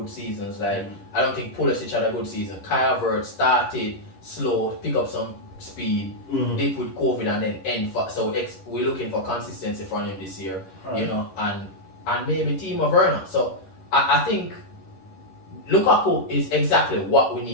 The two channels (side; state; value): right; late; 11 ms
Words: seasons, like I don't think Pulisic had a good season. Kai Havertz started slow, pick up some speed, dip with COVID, and then end. So we're looking for consistency from him this year, you know, and maybe Timo Werner. So I think Lukaku is exactly what we